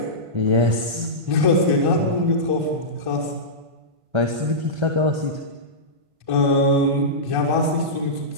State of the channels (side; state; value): left; late; 1.5 ms